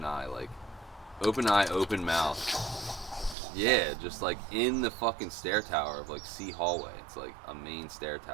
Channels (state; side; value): drops out; left; at 3.4 s